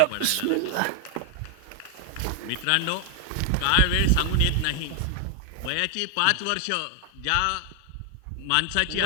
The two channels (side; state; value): both; different; correlation 0.00